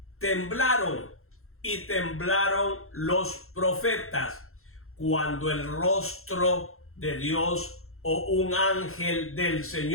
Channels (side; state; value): right; late; 0.62 ms